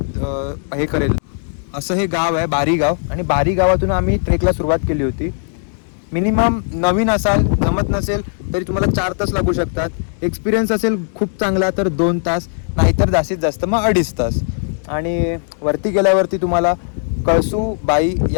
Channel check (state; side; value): silent; right; 68 dB below the other